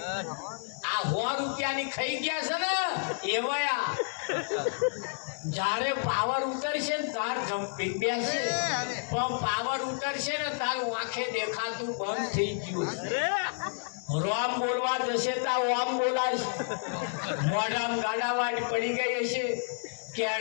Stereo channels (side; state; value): right; silent; digital silence